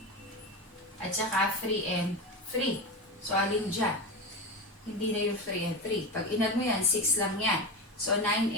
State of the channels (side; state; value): both; normal; correlation 0.21